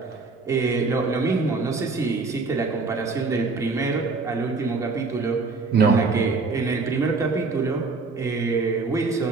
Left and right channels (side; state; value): left; quieter; 4.0 dB